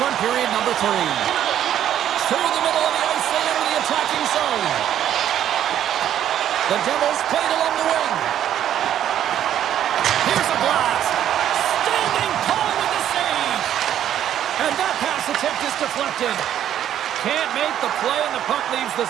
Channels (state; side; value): quieter; left; 10.7 dB